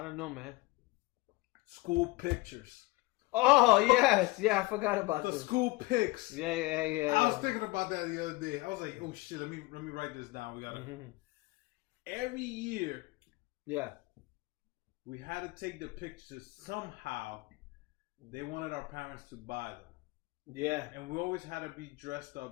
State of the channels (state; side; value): quieter; right; 21.6 dB